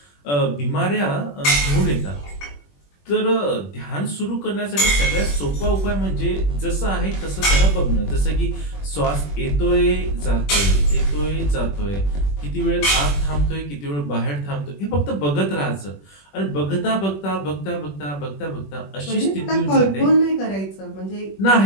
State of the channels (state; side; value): late; right; 21 ms